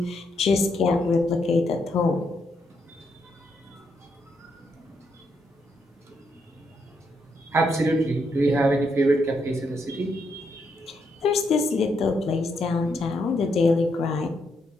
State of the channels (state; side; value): normal; both; correlation 0.78